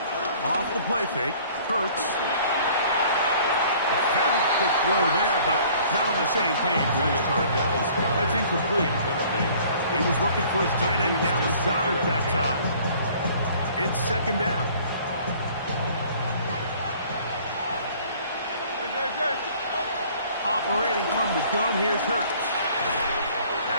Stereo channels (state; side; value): inverted; both; correlation -0.53